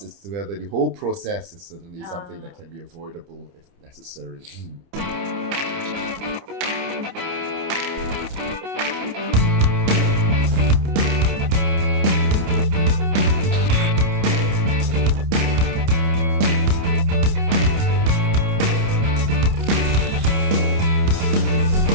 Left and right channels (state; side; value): late; left; 29 ms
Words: it's whether the whole process is certainly something that can be avoidable if necessary.